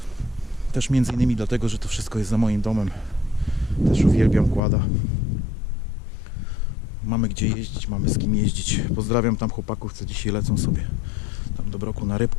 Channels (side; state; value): right; drops out; at 4.6 s